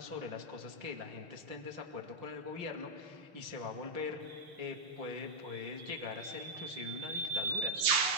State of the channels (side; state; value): left; late; 6.8 ms